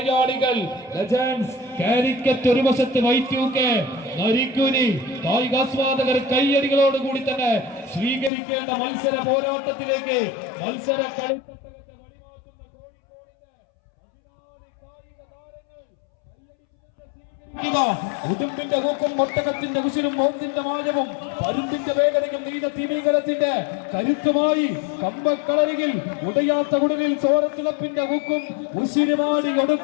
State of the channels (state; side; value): drops out; right; at 8.3 s